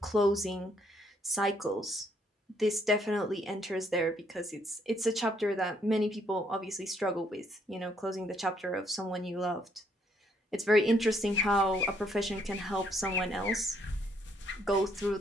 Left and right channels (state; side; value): normal; both; correlation 0.70